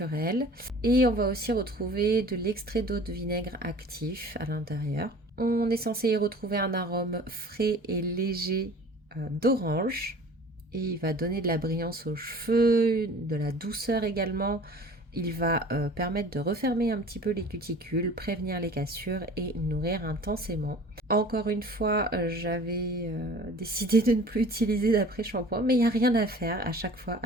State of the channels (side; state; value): both; normal; correlation 0.45